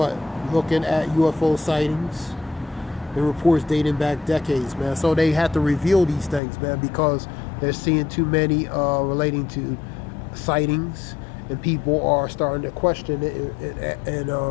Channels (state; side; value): drops out; right; at 6.4 s